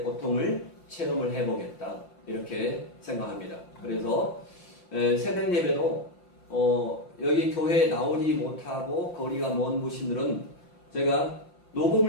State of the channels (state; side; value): late; right; 5.8 ms